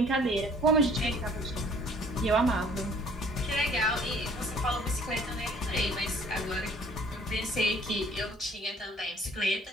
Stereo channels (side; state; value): both; normal; correlation 0.55